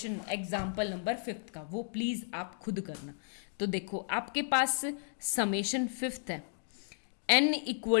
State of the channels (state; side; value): silent; right; 55 dB below the other